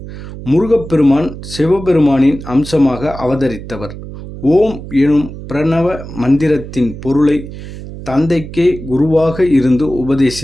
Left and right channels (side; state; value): right; noise; hum, 12 dB below the sound